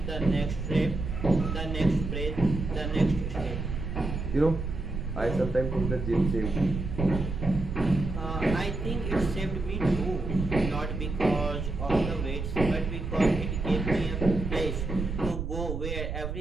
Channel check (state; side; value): noise; right; rumble, 4 dB below the sound